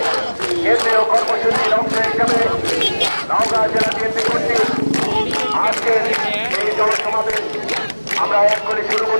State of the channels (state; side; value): inverted; both; correlation -1.00